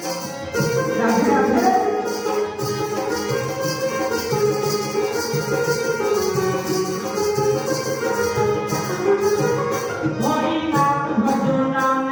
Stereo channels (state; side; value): identical; both; correlation 1.00